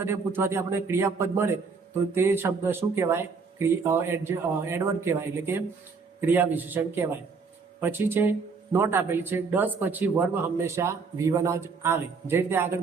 પૂછવાથી આપણને ક્રિયાપદ મળે તો તે શબ્દ શું કહેવાય, એડવર્બ કહેવાય એટલે કે ક્રિયા વિશેષણ કહેવાય. પછી છે નોટ આપેલી છે ડઝ પછી વર્બ હંમેશા V1 જ આવે. જે રીતે આગળ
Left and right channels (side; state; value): left; quieter; 4.9 dB